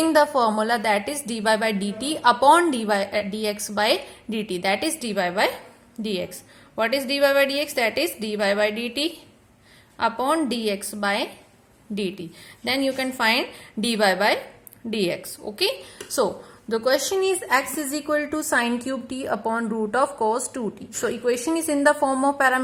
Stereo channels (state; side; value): identical; both; correlation 1.00